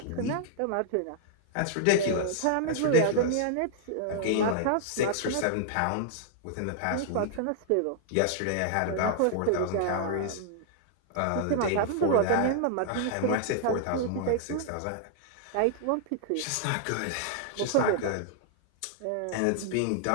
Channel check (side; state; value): both; different; correlation -0.01